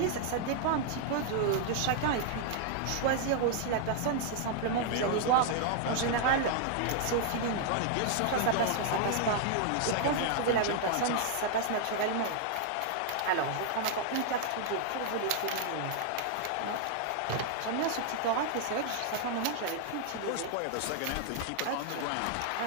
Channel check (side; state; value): both; different; correlation 0.00